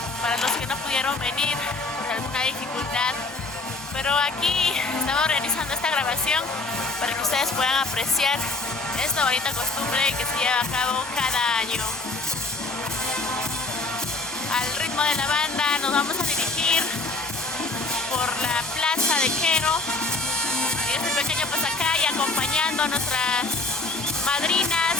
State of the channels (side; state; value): right; quieter; 3.3 dB